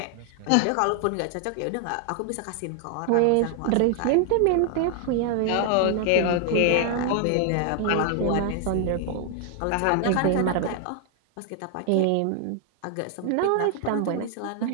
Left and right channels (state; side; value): different; both; correlation 0.00